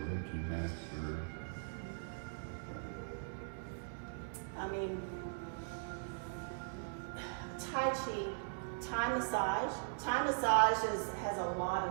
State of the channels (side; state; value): left; silent; digital silence